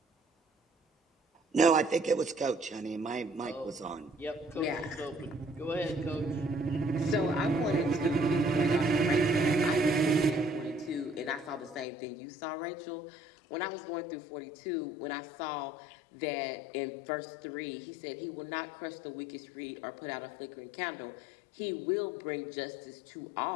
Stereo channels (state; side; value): drops out; right; at 11.9 s